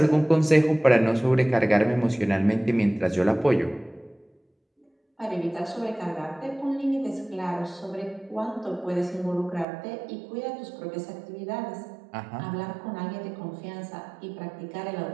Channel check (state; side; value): drops out; left; at 9.7 s